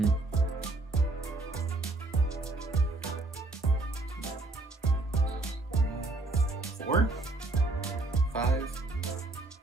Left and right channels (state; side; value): quieter; left; 3.0 dB